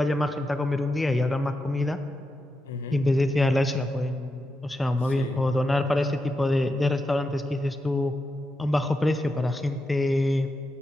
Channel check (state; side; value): normal; both; correlation 0.87